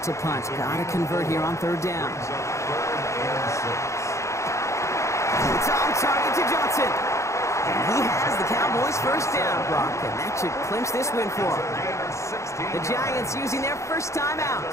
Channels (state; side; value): late; right; 0.14 ms